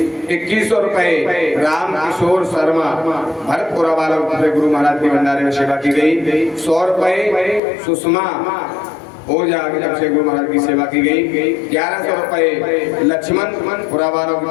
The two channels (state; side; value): drops out; right; at 7.6 s